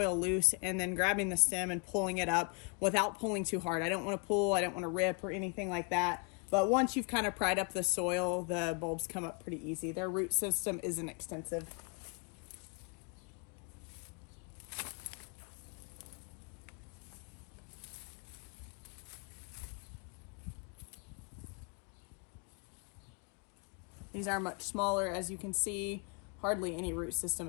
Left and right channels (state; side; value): quieter; right; 31.8 dB